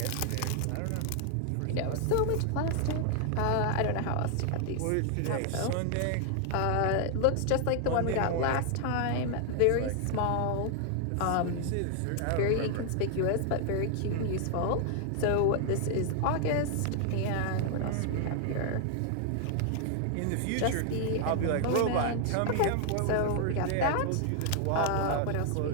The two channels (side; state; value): both; different; correlation 0.00